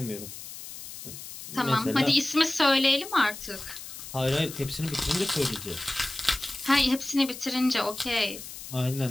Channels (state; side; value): noise; left; hiss, 12 dB below the sound